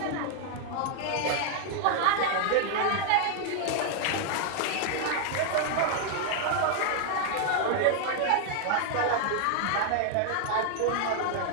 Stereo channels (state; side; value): different; both; correlation 0.00